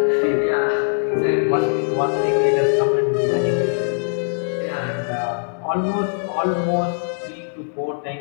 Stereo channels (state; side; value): silent; right; digital silence